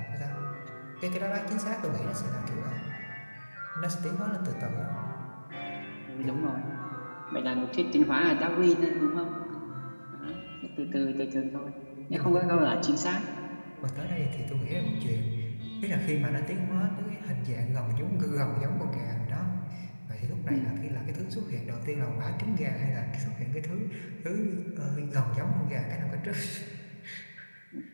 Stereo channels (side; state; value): both; inverted; correlation -1.00